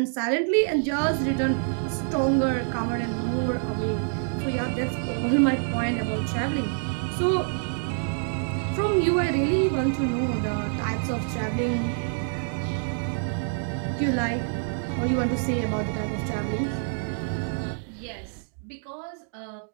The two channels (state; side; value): silent; left; 60 dB below the other